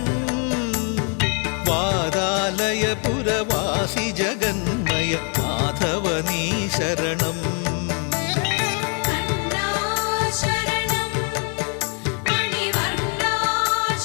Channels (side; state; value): right; quieter; 39.4 dB